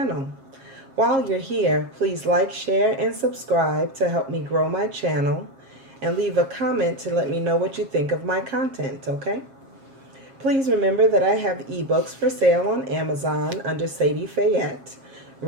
While you're here, please like, share, and subscribe to help me grow my channel, and leave a comment to let me know what you think of my content, okay? Please remember that I have ebooks for sale on Amazon under Sadi Phayet,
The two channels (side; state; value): left; late; 7.4 ms